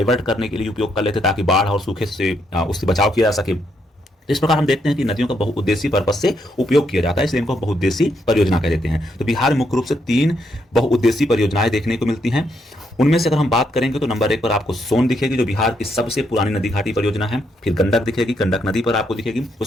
करने के लिए उपयोग कर लेते हैं ताकि बाढ़ और सूखे से उससे बचाव किया जा सके। इस प्रकार हम देखते हैं कि नदियों का बहुउद्देशीय पर्पज से उपयोग किया जाता है, इसलिए इनको बहुउद्देशीय परियोजना कह देते हैं। तो बिहार में मुख्य रूप से 3 बहुउद्देशीय परियोजनाएं देखने को मिलती हैं। उनमें से अगर हम बात करेंगे तो नंबर 1 पर आपको सोन दिखेगी, जो बिहार की सबसे पुरानी नदी घाटी परियोजना है। फिर गंडक दिखेगी, गंडक नदी पर आपको दिखेगी।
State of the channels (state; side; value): normal; both; correlation 0.76